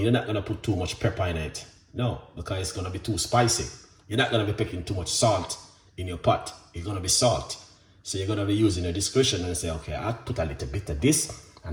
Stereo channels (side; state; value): both; identical; correlation 1.00